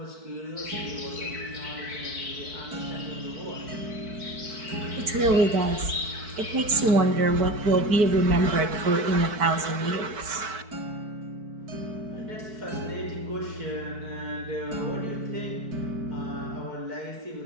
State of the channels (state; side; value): late; left; 4.6 ms